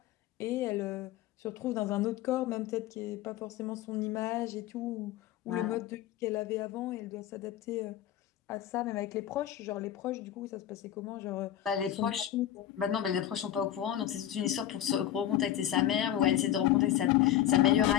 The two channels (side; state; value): right; quieter; 11.8 dB